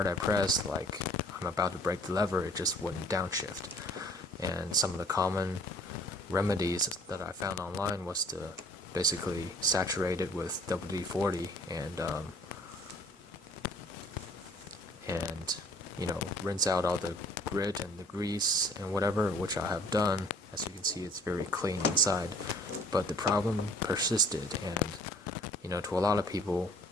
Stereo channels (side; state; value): both; normal; correlation 0.54